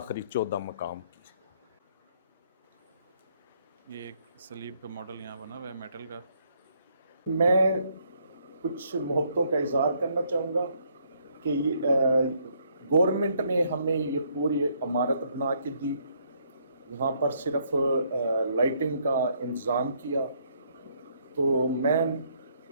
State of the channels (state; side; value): inverted; both; correlation -0.70